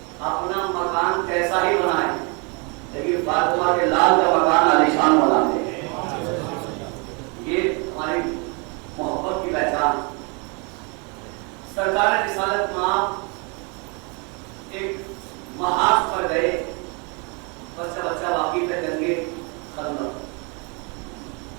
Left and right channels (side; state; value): left; quieter; 32.8 dB